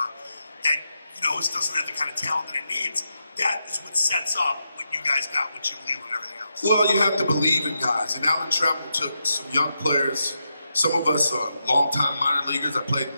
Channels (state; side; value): inverted; both; correlation -0.85